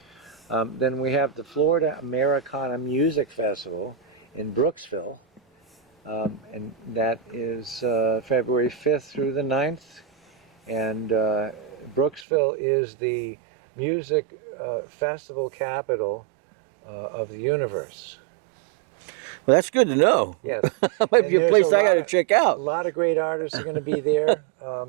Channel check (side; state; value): left; drops out; at 12.2 s